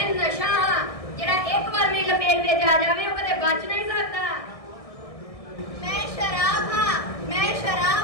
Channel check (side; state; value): right; late; 1.6 ms